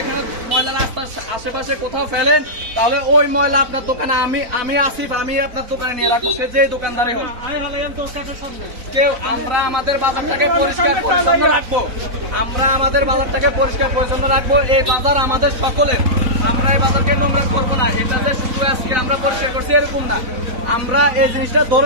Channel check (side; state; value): left; late; 4.0 ms